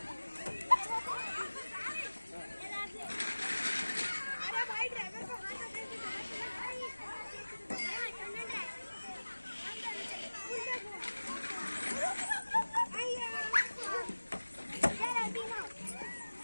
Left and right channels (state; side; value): inverted; both; correlation -1.00